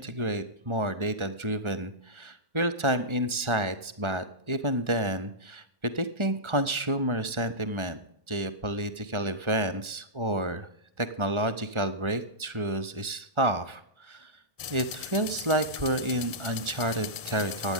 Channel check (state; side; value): late; left; 1.4 ms